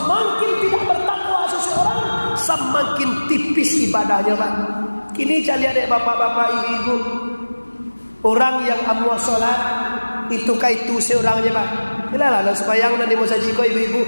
tidak bertakwa seseorang, semakin tipis ibadahnya, Pak. Kini saya lihat bapak-bapak, ibu-ibu, orang yang amwa sholat itu kaitu seorangnya, Pak. Ilalah sebayang nanti mau saji kau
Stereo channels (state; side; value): inverted; both; correlation -1.00